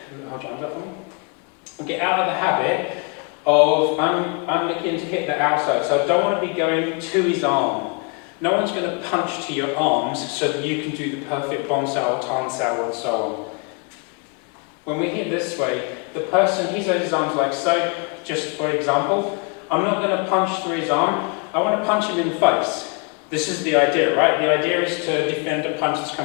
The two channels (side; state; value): right; quieter; 34.2 dB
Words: get out of the habit of I'm looking to hit the outside. So I don't want to be going to his arm. No one's going to punch to your arms so that you can do the perfect bonsai, tansai, and so on. When we hit this way, the person, he's got his arms like so, just for example. I'm not going to punch through his arm, I want to punch him in the face. This is the idea, right? The idea is to defend a punch that's